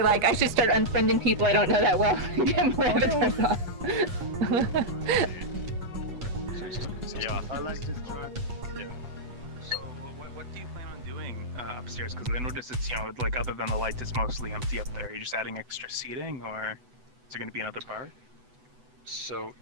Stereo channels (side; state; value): left; late; 8.1 ms